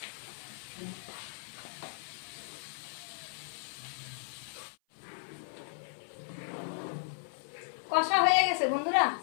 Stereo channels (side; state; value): right; silent; 54 dB below the other